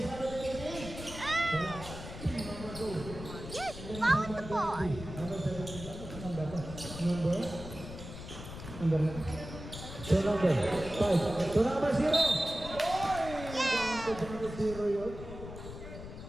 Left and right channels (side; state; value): left; noise; rumble, 11 dB below the sound